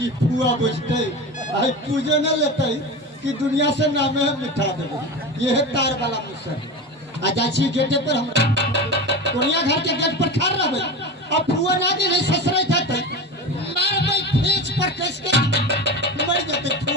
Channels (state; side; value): normal; both; correlation 0.26